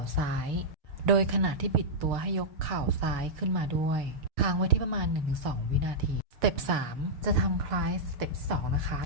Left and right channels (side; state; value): left; late; 6.6 ms